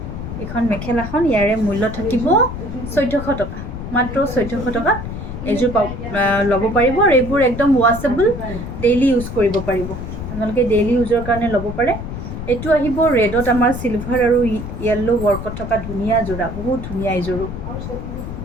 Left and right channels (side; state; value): left; noise; rumble, 7 dB below the sound